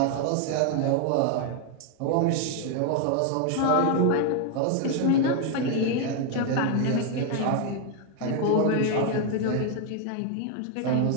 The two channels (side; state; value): both; different; correlation 0.01